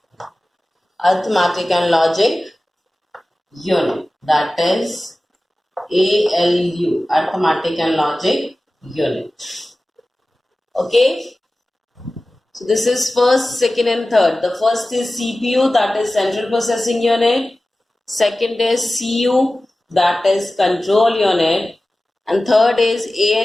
Unit, that is ALU, Arithmetic and Logic Unit. Okay, so this is first, second and third. The first is CPU, that is Central Processing Unit. Second is CU, that is Control Unit. And third is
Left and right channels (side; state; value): both; normal; correlation 0.96